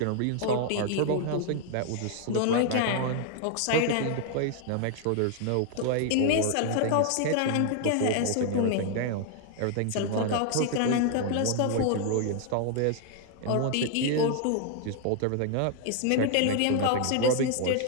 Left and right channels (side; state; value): both; different; correlation 0.00